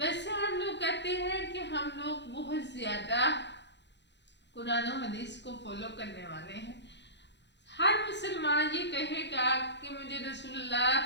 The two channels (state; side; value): late; right; 0.51 ms